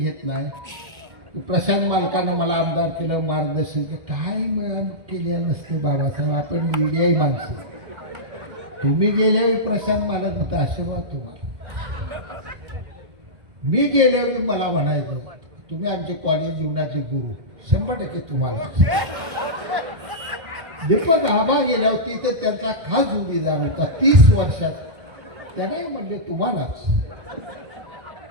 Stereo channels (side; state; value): left; late; 2.1 ms